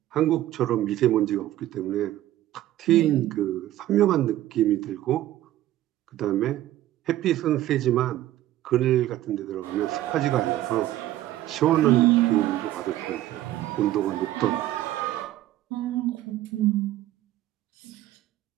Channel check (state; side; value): quieter; left; 14.1 dB